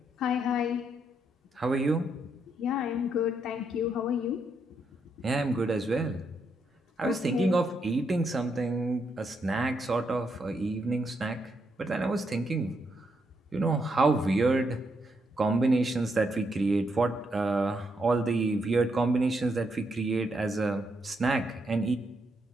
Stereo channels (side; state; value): both; normal; correlation 0.78